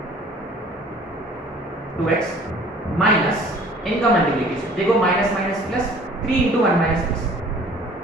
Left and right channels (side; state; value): both; normal; correlation 0.51